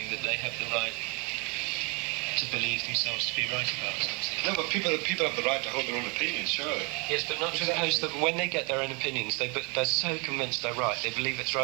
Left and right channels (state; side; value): quieter; left; 31.8 dB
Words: that they have the right to believe themselves to be right about something. No, but people have the right to hold their own opinions, surely. Yes, but not to impose that when they get their own opinions, they're so convinced they're right, they believe it's